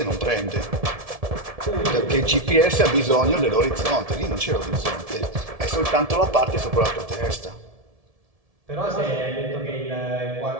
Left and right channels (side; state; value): left; late; 1.7 ms